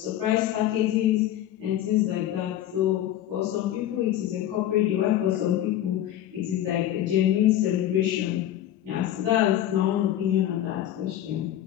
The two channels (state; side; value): quieter; right; 12.2 dB